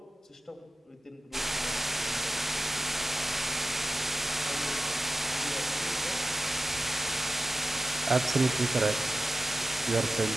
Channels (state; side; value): normal; both; correlation 0.92